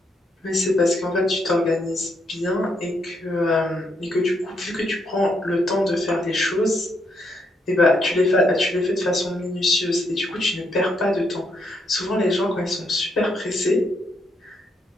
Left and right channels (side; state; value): both; normal; correlation 0.76